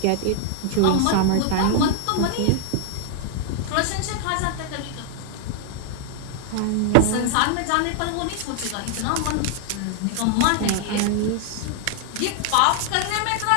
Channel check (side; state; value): both; different; correlation 0.00